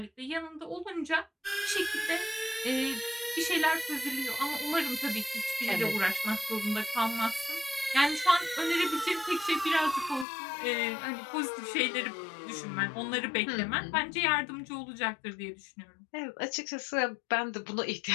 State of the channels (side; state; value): right; drops out; at 10.2 s